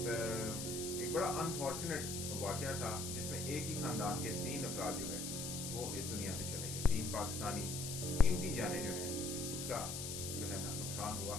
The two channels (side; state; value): left; noise; hiss, 5 dB below the sound